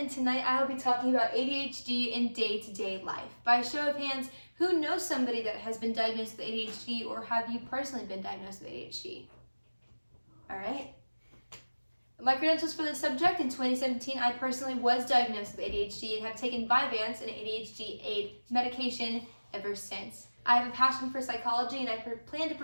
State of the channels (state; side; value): inverted; both; correlation -1.00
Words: tonight I will be talking about ADHD in day-to-day life. By a show of hands, who knows somebody that has been diagnosed with ADHD, or have you personally been diagnosed with ADHD? Alright. My credentials for this subject: in 2017, I personally was diagnosed with ADHD and have taken Vyvanse, an ADHD aid medication, ever since. I have a passion for psychology, and I plan to